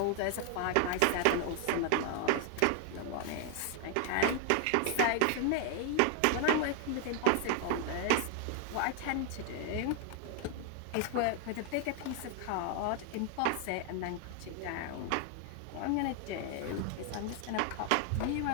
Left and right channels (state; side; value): different; both; correlation 0.00